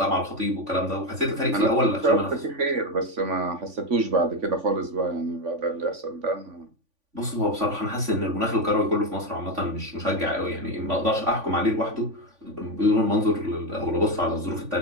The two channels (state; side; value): late; left; 3.5 ms